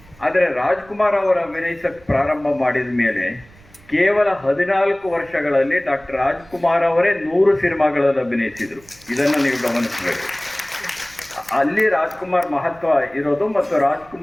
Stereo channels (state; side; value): noise; right; rumble, 26 dB below the sound